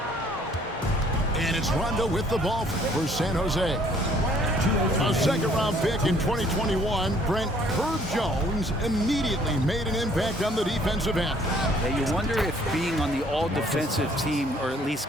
And it's Rondo with the ball for San Jose. A second-round pick in 2021, Brent Herb Jones immediately made an impact on the defensive end. Yeah, you wonder if being on the all-defensive team, or at least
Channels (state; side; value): normal; both; correlation 0.60